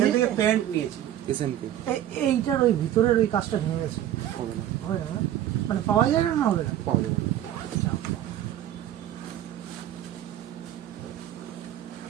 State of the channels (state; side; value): quieter; left; 12.0 dB